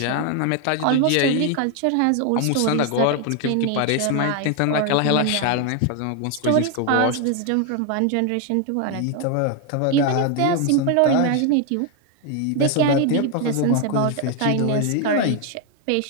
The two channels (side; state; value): both; different; correlation 0.01